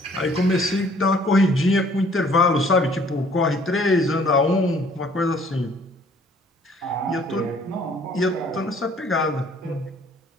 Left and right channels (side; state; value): both; normal; correlation 0.58